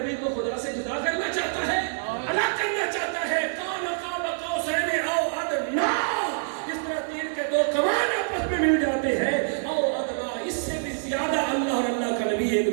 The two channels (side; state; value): left; silent; 61 dB below the other